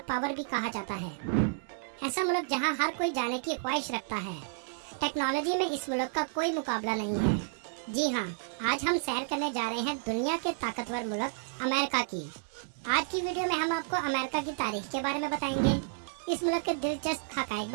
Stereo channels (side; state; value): left; silent; digital silence